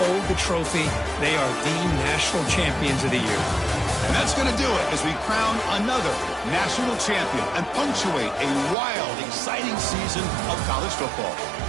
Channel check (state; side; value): drops out; left; at 8.8 s